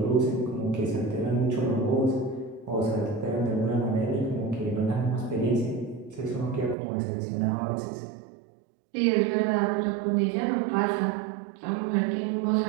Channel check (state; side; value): drops out; left; at 6.8 s